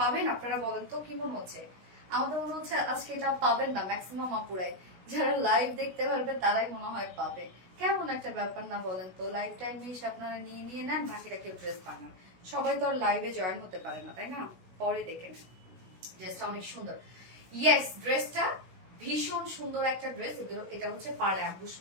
আপনারা, বলেন তো কি মনে হচ্ছে? আমার তো মনে হচ্ছে আজকে এটা পাবেন না ম্যাক্সিমাম আপুরাই, যারা লাইভ দেখতে পারবে তারাই মনে হয় পাবে। কেমন একটা ব্যাপার না বলেন তো, লাইভ টাইমে এসে আপনারা নিয়ে নিয়ে নেন, বাকিটা কেউ ড্রেস বানান। সবাই তো আর লাইভে জয়েন হতে পারে না, তাই না? পরে দেখে নেন। ড্রেসটা অনেক সুন্দর, ইয়েস ড্রেসটা ভীষণ সুন্দর একটা ড্রেস। এটা হচ্ছে পার অ্যাম্বুশ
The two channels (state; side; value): late; left; 16 ms